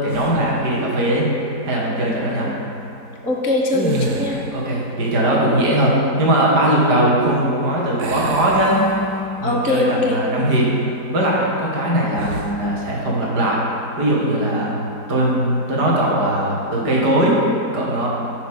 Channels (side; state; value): left; late; 4.6 ms